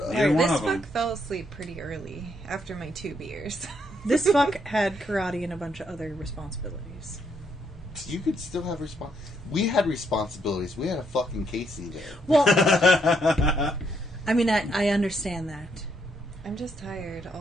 up. Neither one This of them. fuck fell asleep pretty early after my 2 beers. This fuck had karate and a bunch of other responsibilities. You could still have We had responsibilities. We had a fucking Casey there. Well, I mean, I understand that. I'm just tired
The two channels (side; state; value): both; normal; correlation 0.74